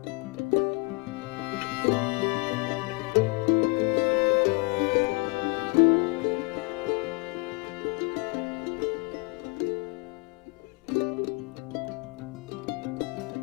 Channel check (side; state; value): right; quieter; 30.4 dB